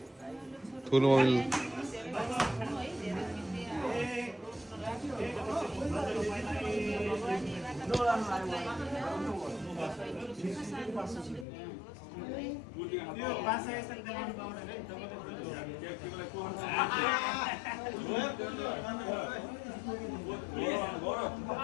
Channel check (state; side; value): drops out; right; at 11.5 s